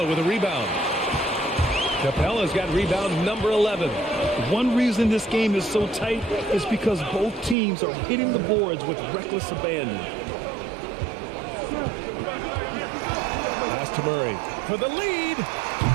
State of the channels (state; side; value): drops out; left; at 7.6 s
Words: with a rebound. Capella's got rebound number 11. One reason this game is so tight is because both teams are hitting the boards with reckless abandon. Pass to Murray for the lead.